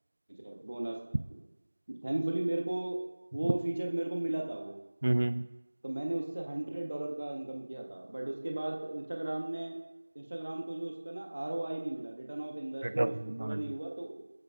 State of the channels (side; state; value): both; inverted; correlation -1.00